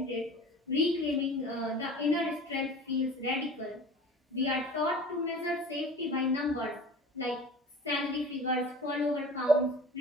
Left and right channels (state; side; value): normal; both; correlation 0.40